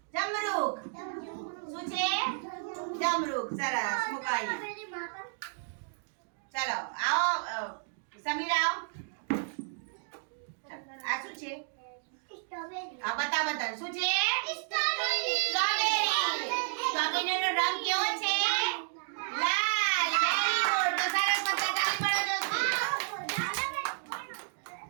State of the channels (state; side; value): silent; left; digital silence